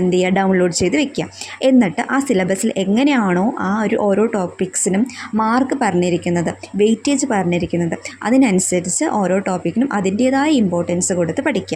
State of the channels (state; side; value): identical; both; correlation 1.00